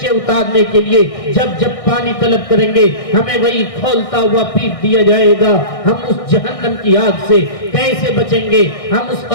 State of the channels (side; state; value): right; late; 1.6 ms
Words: उतारने के लिए जब पानी तलब करेंगे हमें वही खोलता हुआ पीट दिया जाएगा। हम उस जहन्नम की आग से कैसे बचेंगे? हम उस